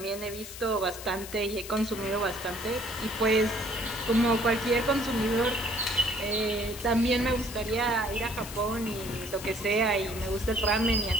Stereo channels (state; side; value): noise; left; hiss, 12 dB below the sound